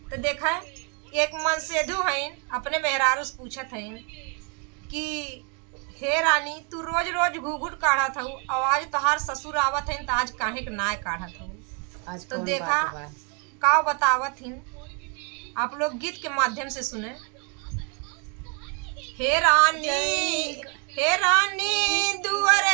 तो देखा एक मन सेधु हईन अपने मेहरारू से पूछत हईन कि हे रानी, तू रोज रोज घूघूट काढ़त हूँ, आवाज तोहार ससुर आवत हईन, तो आज काहे के नाय काढ़त हूँ। आज तो कौन देखा बात बा? का बतावत हिन, आप लोग गीत के माध्यम से सुने। हे रानी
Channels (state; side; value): quieter; left; 35.2 dB